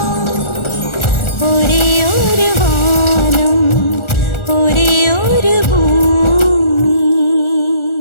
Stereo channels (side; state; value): right; late; 1.4 ms